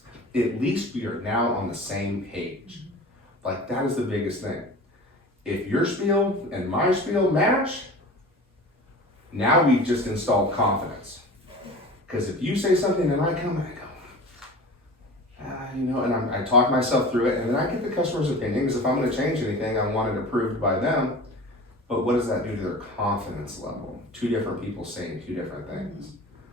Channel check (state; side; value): normal; both; correlation 0.37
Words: At least we are now on the same page. Like, that is the biggest thing. If your spiel and my spiel match, now we've just installed confidence. Because if you say something and I come and I go, and I talk myself through it, and then I get the customer's opinion, because if I'm gonna change anything, I want it approved by them. But what does that do to their confidence level? Two different people saying two different things.